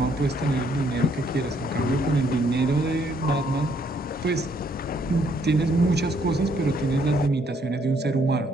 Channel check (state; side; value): normal; both; correlation 0.69